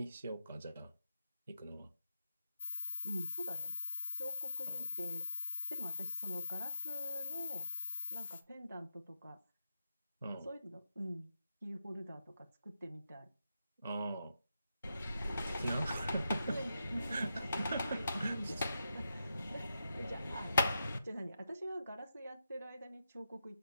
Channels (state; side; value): inverted; both; correlation -0.86